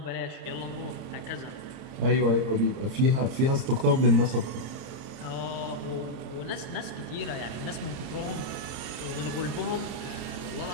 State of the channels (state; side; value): late; left; 30 ms